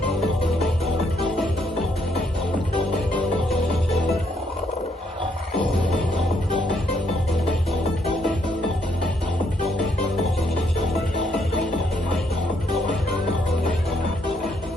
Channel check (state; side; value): normal; both; correlation 0.72